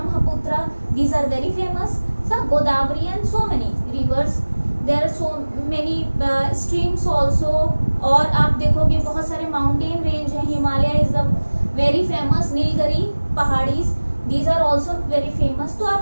these are very famous. सब Godavari and so many rivers. There are so many streams also. और आप देखोगे बहुत सारे माउंटेन रेंज हैं. Himalaya is the very famous. Nilgiri पहाड़ीज, these are also very famous. तो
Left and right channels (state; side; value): inverted; both; correlation -1.00